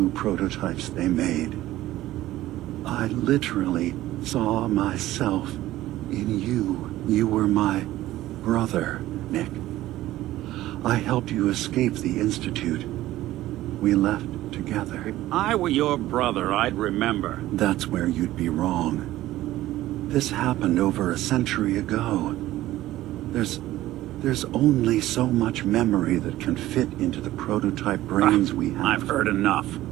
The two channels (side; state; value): left; quieter; 15.4 dB